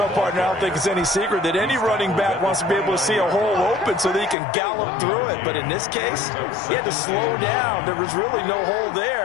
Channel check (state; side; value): drops out; right; at 4.4 s